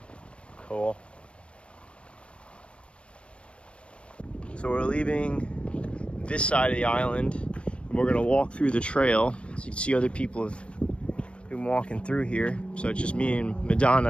Cool. So we're leaving this side of the island, and we're gonna walk through the trail. So you can see other people have been walking through here. So it's just me and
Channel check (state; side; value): late; right; 0.059 ms